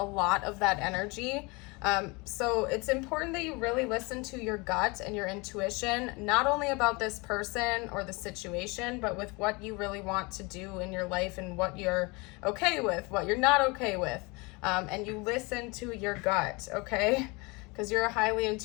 lot of that energy. So it's important that you really listen to your gut and your intuition, not only about this person or the situation, but with what you really want to do in your life and what you're okay with, what you're not okay with. And you listen to your gut, okay? Because you're a highly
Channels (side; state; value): right; quieter; 27.0 dB